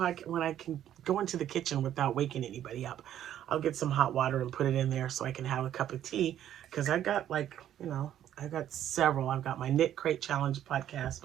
when I can go into the kitchen without waking anybody up, I'll get some hot water and put it in there so I can have a cup of tea. Because I got like, I got several. I've got my Knit Crate Challenge podcast,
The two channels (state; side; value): quieter; left; 11.2 dB